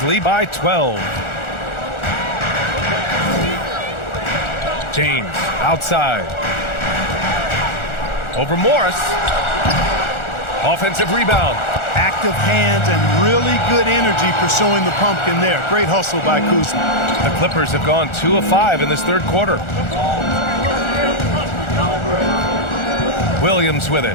lead by 12. James outside. Over Morris. Offensive rebound. Active hands and really good energy pursuing the pumpkin there. Great hustle by Kuzma. The Clippers have gone 2 of 5 in this third quarter. Williams with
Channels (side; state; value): right; late; 1.4 ms